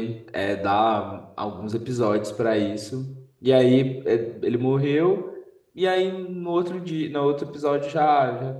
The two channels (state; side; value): identical; both; correlation 1.00